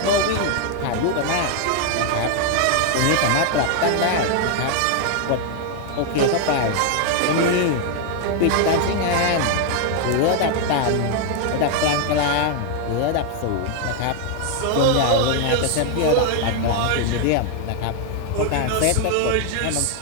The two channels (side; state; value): both; different; correlation 0.00